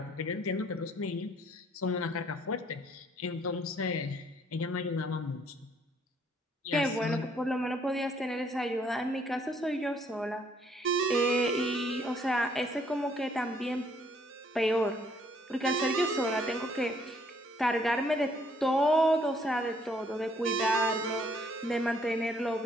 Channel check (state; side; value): normal; both; correlation 0.65